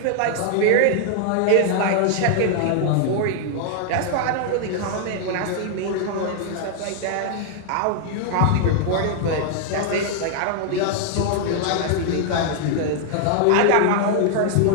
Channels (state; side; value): different; both; correlation 0.00